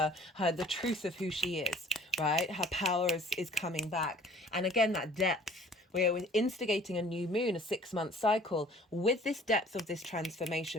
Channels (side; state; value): both; normal; correlation 0.52